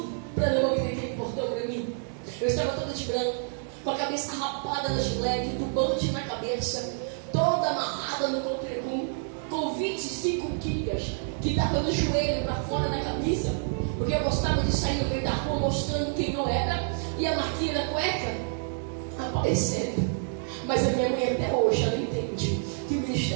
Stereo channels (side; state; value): left; silent; 59 dB below the other